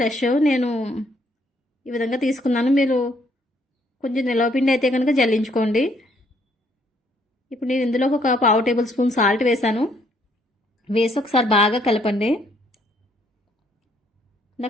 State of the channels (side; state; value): both; normal; correlation 0.68